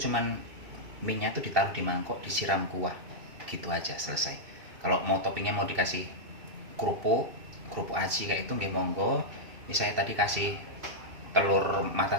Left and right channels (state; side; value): late; left; 2.7 ms